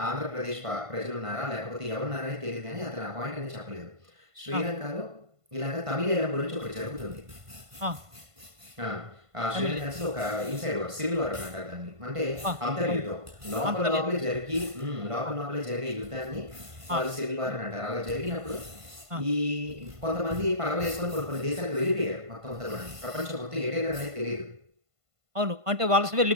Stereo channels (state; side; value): late; left; 1.5 ms